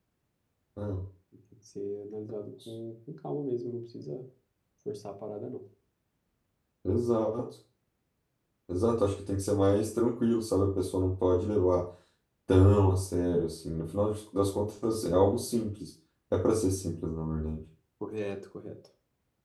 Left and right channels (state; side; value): identical; both; correlation 1.00